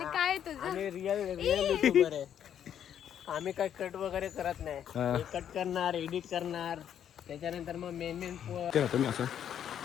काय तुझं रिअल युट्यूबर आहे. आम्ही काय कट वगैरे करत नाही. कट करणार, एडिट करणार, त्याच्यानंतर मग मेन तुम्ही असं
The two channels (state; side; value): quieter; right; 9.5 dB